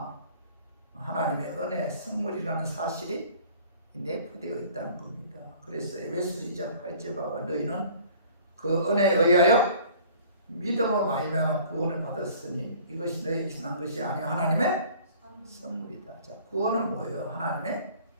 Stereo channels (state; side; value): inverted; both; correlation -0.51